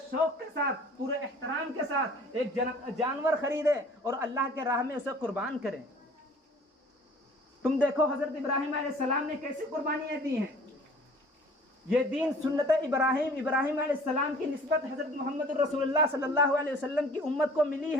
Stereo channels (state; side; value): normal; both; correlation 0.50